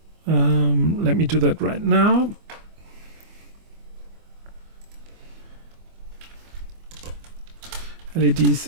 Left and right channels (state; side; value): late; left; 24 ms